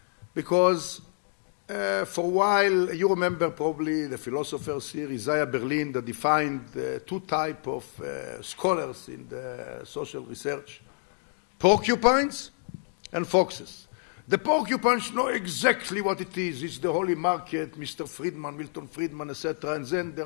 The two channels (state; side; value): silent; right; 55 dB below the other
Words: because for a while, you remember probably the philosophers here, Isaiah Berlin, that defined two types of scholars in the social research, porcupines and foxes. The porcupines know exactly what it is. It's the holy market, Mr. Friedman, Milton Friedman, etc. And then